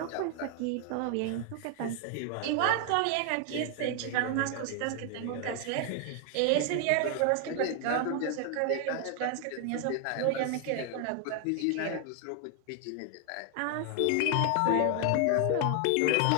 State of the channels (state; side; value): different; both; correlation 0.00